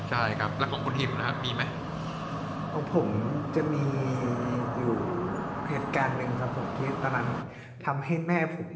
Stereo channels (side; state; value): both; identical; correlation 1.00